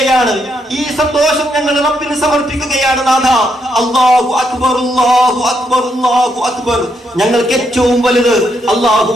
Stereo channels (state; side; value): normal; both; correlation 0.77